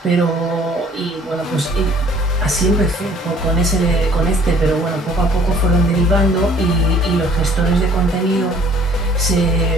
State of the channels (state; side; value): normal; both; correlation 0.56